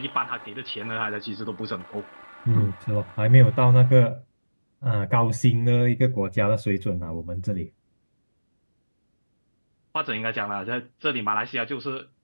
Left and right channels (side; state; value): both; inverted; correlation -1.00